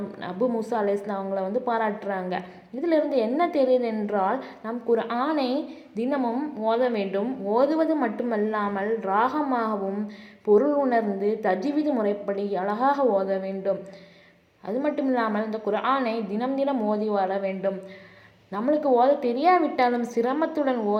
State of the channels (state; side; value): identical; both; correlation 1.00